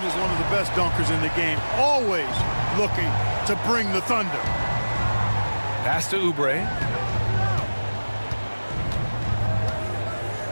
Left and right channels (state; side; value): inverted; both; correlation -1.00